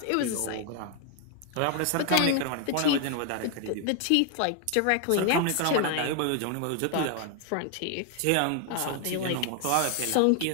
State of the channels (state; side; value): different; both; correlation 0.01